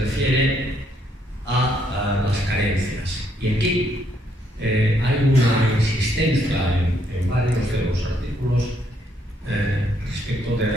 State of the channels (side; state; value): both; normal; correlation 0.72